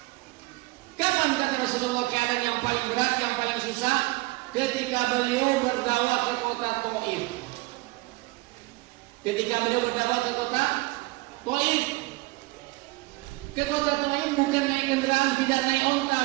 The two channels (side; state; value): left; quieter; 22.8 dB